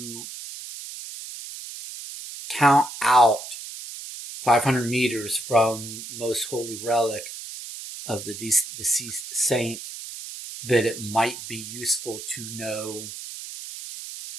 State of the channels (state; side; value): noise; right; hiss, 11 dB below the sound